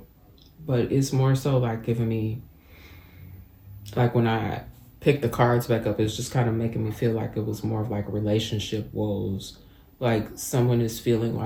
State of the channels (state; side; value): identical; both; correlation 1.00